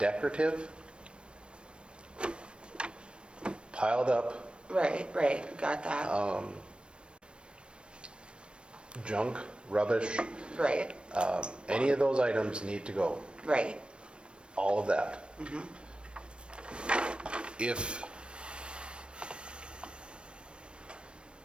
piled up, right, got that. junk, rubbish, Right, any of those items need to go. right. All of that. If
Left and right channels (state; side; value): late; left; 0.057 ms